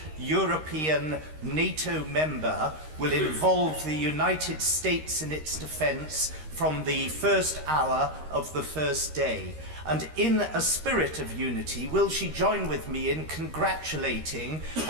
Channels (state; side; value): late; left; 13 ms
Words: European NATO member will involve the United States in its defence from the first hour of the first day? And in a spirit of unity, will she join with me in congratulating